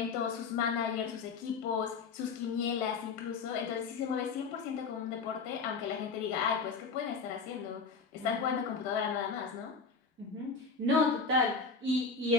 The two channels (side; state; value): right; quieter; 4.8 dB